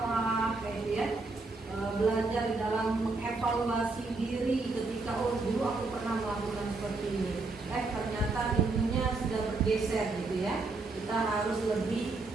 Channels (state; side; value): quieter; left; 3.6 dB